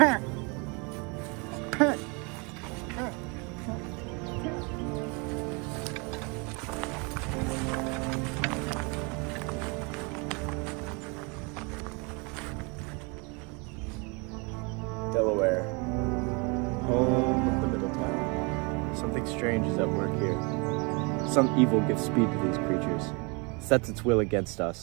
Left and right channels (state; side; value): quieter; left; 30.7 dB